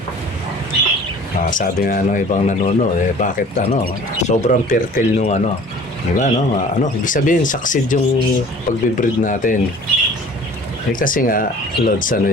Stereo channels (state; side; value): normal; both; correlation 0.47